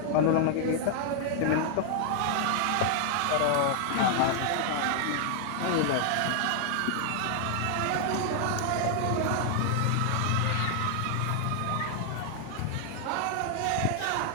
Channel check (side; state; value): both; different; correlation 0.00